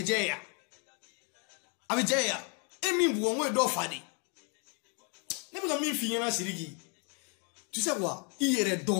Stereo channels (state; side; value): quieter; right; 37.3 dB